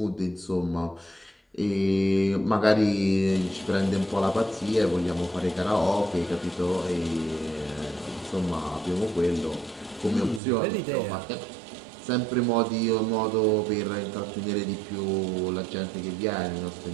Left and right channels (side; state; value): left; drops out; at 10.4 s